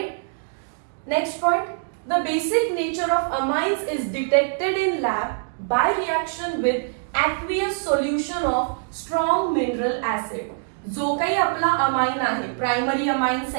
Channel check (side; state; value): left; silent; digital silence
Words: Next point, the basic nature of amines is detected in lab by reaction with aqueous solution of strong mineral acid. जो काही आपला amine आहे, primary amine,